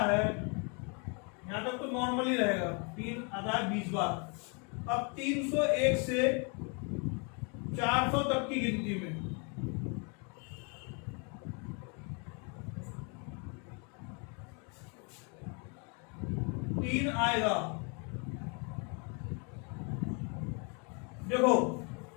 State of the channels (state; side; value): quieter; right; 35.3 dB